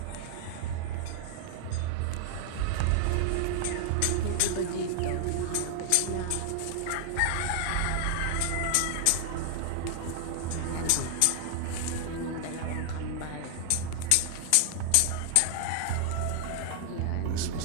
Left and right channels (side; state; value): both; different; correlation 0.00